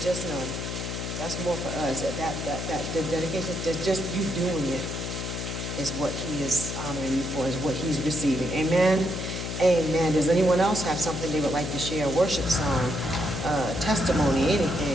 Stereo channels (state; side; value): noise; left; hum, 5 dB below the sound